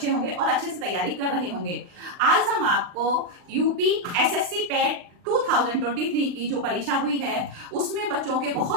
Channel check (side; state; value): left; late; 39 ms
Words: होंगे और अच्छे से तैयारी कर रहे होंगे। आज हम आपको यूपी एसएससी पेट 2023 की जो परीक्षा हुई है उसमें बच्चों के